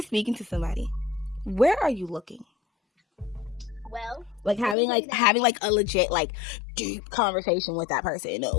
speaking to somebody, where are you looking? Well, like having a legit deep conversation with that person.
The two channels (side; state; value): right; drops out; at 4.8 s